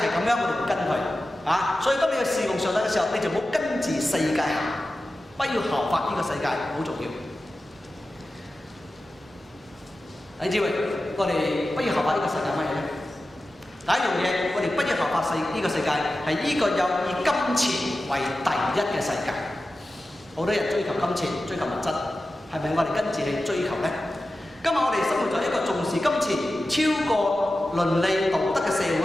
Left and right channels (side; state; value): both; normal; correlation 0.94